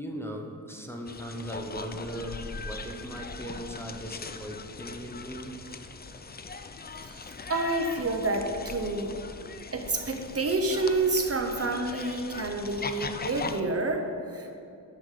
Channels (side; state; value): both; normal; correlation 0.07